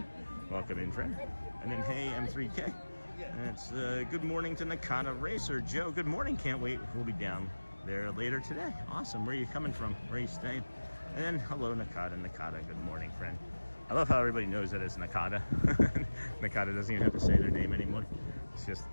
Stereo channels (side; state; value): both; inverted; correlation -1.00